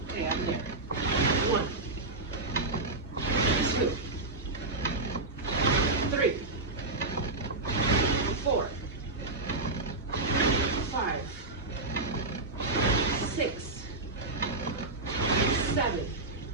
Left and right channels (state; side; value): quieter; left; 3.1 dB